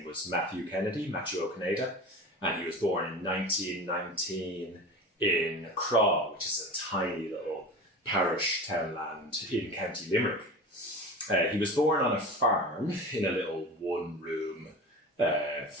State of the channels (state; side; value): normal; both; correlation 0.32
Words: was Matthew O'Conada, and he was born in 1919 in Craw, which is a tiny little parish townland in County Limerick. He was born on a farm in a little one-room